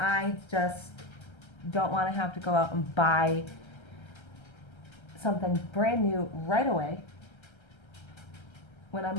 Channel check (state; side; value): late; right; 1.3 ms